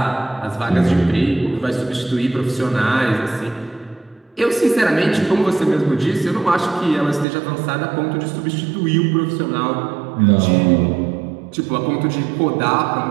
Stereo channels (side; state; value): left; drops out; at 7.2 s